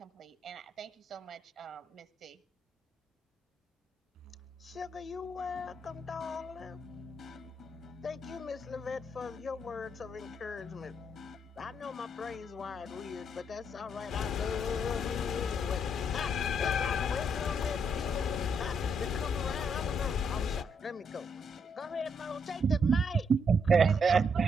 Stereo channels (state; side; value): normal; both; correlation 0.75